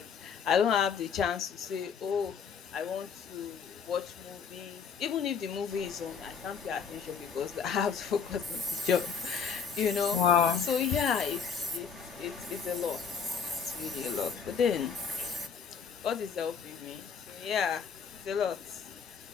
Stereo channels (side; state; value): right; quieter; 6.4 dB